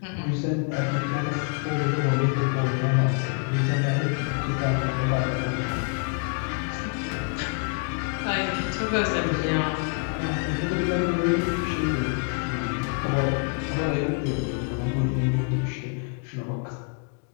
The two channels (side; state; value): right; quieter; 38.2 dB